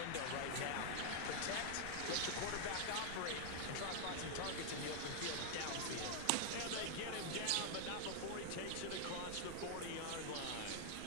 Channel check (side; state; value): both; different; correlation 0.00